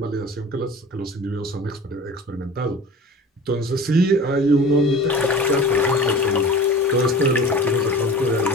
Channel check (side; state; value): both; normal; correlation 0.39